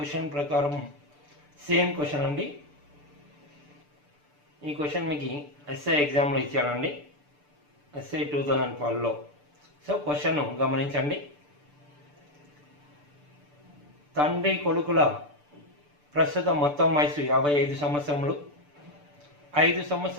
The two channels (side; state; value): left; late; 6.8 ms